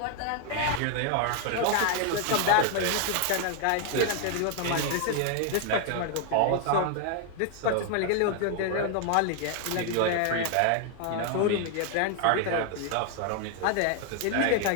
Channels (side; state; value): both; different; correlation 0.00